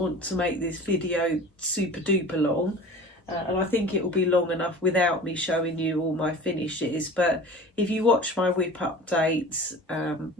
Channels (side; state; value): both; normal; correlation 0.39